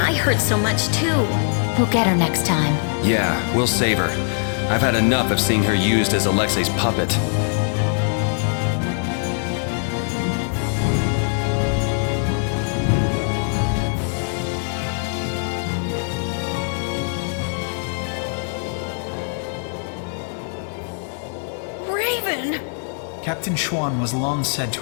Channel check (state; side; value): silent; right; 59 dB below the other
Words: hurt so much too? We'll get her next time. Yeah, we'll save her. I've had enough of seeing her used as Alexei's puppet. Raven! Captain Schwann was long said